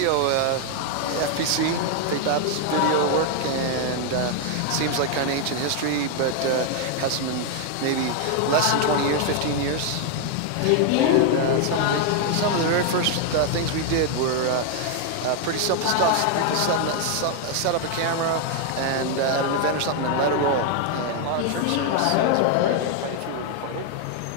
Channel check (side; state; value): both; different; correlation 0.00